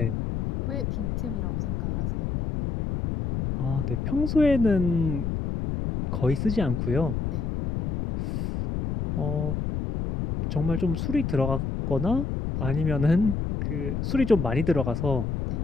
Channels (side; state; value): left; noise; rumble, 2 dB below the sound